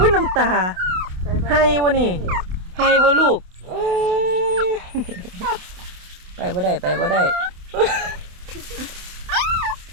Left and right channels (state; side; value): late; left; 27 ms